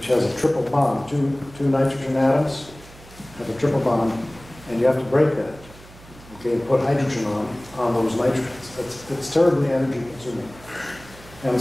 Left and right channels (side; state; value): right; noise; hum, 21 dB below the sound